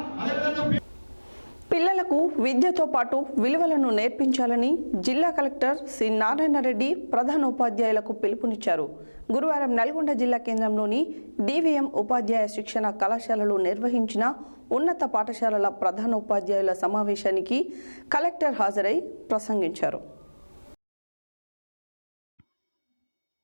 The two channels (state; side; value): inverted; both; correlation -1.00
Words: అదేవిధంగా పిల్లలకు విద్యతో పాటు విలువలను నేర్పించాలని జిల్లా కలెక్టర్ సి నారాయణ రెడ్డి ప్రధానోపాధ్యాయులకు పిలుపునిచ్చారు. గురువారం నల్గొండ జిల్లా కేంద్రంలోని డివిఎం ఉపాధ్యాయ శిక్షణ కళాశాలలో నిర్వహించిన ఉన్నత పాఠశాలల ప్రధానోపాధ్యాయుల సమావేశానికి కలెక్టర్ హాజరై ప్రసంగించారు.